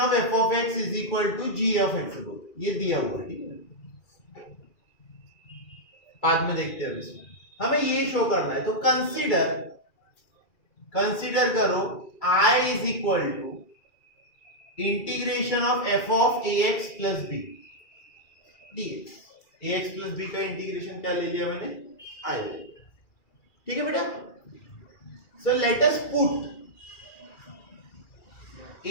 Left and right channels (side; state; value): right; late; 2.4 ms